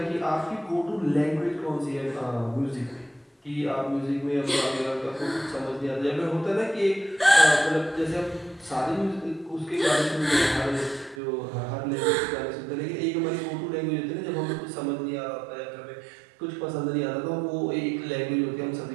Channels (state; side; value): drops out; left; at 11.2 s